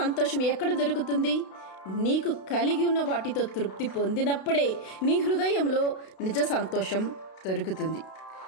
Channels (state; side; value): late; right; 32 ms